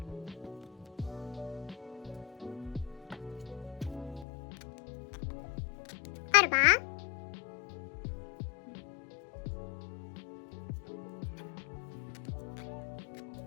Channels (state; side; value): drops out; right; at 4.2 s